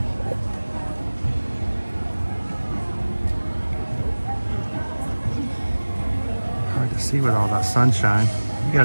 Hard to see with all that sunshine. You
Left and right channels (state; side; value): inverted; both; correlation -1.00